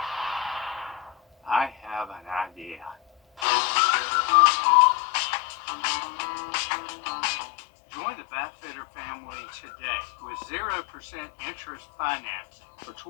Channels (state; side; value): drops out; right; at 3.5 s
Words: I have an idea. Join the Bathfitter family today with 0% interest financing for